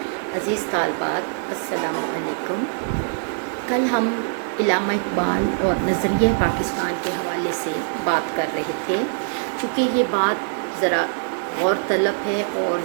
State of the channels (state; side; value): silent; left; digital silence